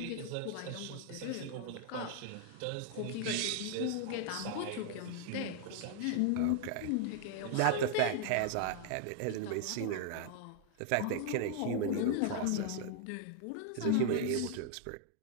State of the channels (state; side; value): different; both; correlation 0.00